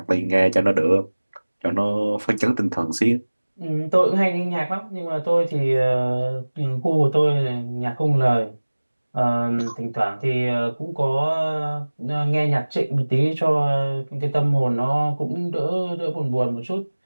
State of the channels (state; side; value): inverted; both; correlation -1.00